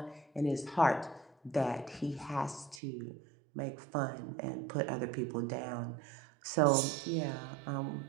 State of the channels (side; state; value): left; drops out; at 2.8 s